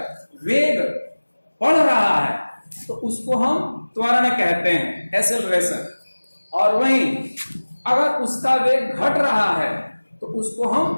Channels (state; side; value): inverted; both; correlation -1.00